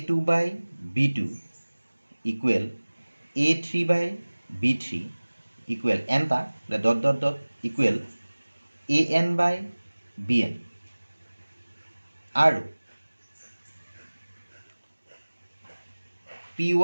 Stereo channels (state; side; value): inverted; both; correlation -1.00